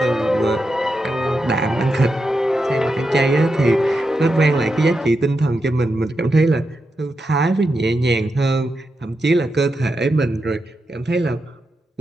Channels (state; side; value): normal; both; correlation 0.87